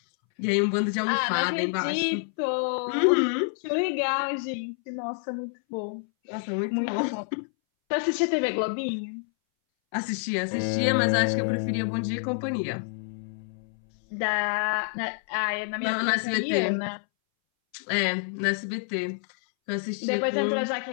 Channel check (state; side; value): silent; right; 60 dB below the other